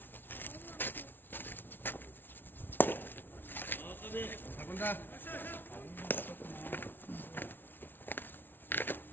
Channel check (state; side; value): late; right; 0.097 ms